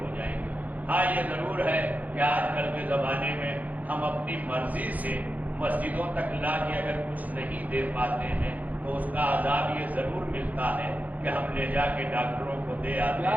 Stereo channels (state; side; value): late; left; 0.078 ms